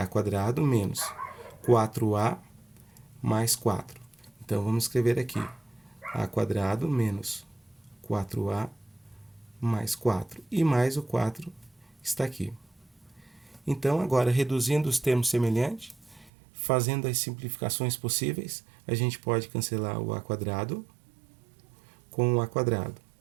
quadrado menos 4A mais 4. Então, vamos escrever aqui A quadrado menos 4A mais 4. E mais o 4 está aqui. Então, agora, reduzindo os termos semelhantes, Fazendo as simplificações possíveis, a gente pode cancelar o a quadrado com o a quadrado.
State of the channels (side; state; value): left; drops out; at 16.3 s